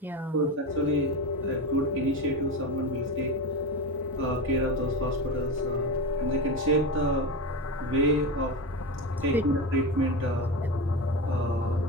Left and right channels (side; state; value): both; normal; correlation 0.21